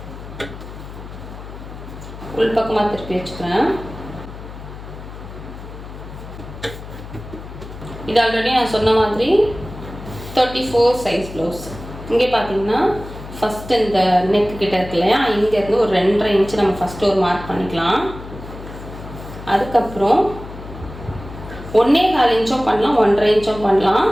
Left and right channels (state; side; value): noise; left; hum, 13 dB below the sound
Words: உள் பக்கமாக திருப்பி வச்சுக்கிறேன். இது ஆல்ரெடி நான் சொன்ன மாதிரி 34 சைஸ் ப்ளவுஸ். இங்கே பார்த்தீங்கன்னா ஃபஸ்ட்டு இந்த நெக்கு கிட்ட இருக்கு இல்லையா, இங்கேருந்து ஒரு 2.5 இன்ச்சு நம்ம ஃபஸ்ட்டு ஒரு மார்க் பண்ணிக்கலாம். அதுக்கப்புறம் 1.25 இன்ச்சும் பண்ணலாம், 1.5 இன்ச்சும் பண்ணலாம்.